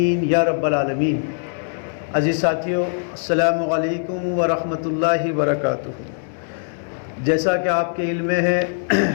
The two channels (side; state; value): right; silent; digital silence